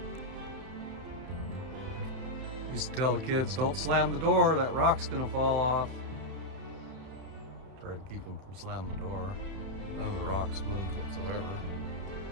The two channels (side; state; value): left; late; 31 ms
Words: Used to tell the kids, don't slam the door, that rock's gonna fall off. Try to keep them from slamming the door. None of the rocks moved whatsoever.